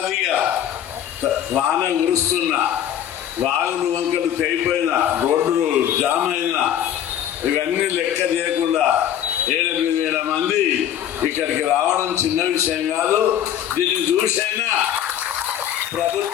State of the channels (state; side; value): quieter; right; 10.4 dB